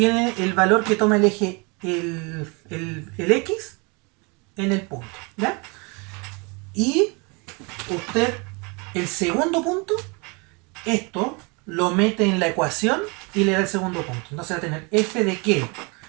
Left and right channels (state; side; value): quieter; left; 30.4 dB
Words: el valor que toma el eje, el x en el punto. ¿Ya? Y usted, el segundo punto, esto lo mete en la ecuación y le da el segundo punto. Entonces va a tener f de qué?